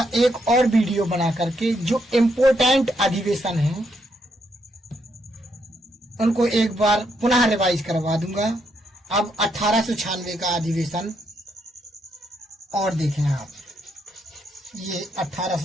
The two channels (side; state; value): both; normal; correlation 0.77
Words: एक और वीडियो बना करके जो इम्पोर्टेंट अधिवेशन है उनको एक बार पुनः रिवाइज करवा दूंगा। अब 1896 का अधिवेशन और देखें आप, ये